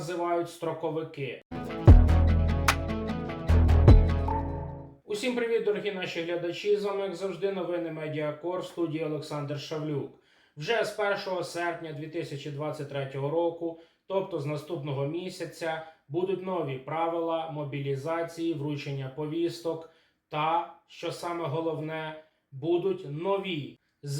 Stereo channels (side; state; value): both; identical; correlation 1.00